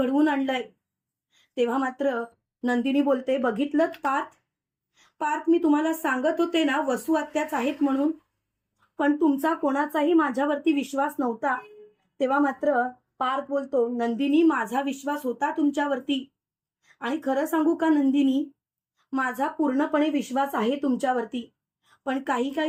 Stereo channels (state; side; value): identical; both; correlation 1.00